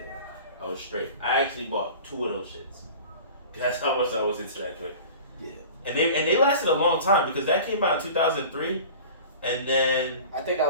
I was straight. I actually bought 2 of those shits. That's how much I was into that joint. Yeah. And they lasted a long time because that came out in 2003, and then I think that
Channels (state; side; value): inverted; both; correlation -0.39